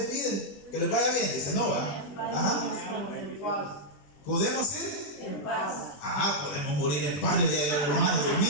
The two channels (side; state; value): right; late; 20 ms